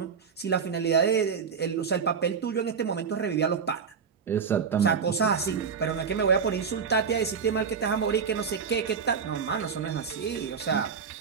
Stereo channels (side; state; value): left; quieter; 6.2 dB